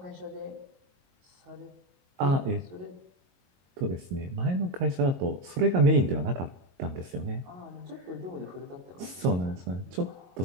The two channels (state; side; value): late; left; 22 ms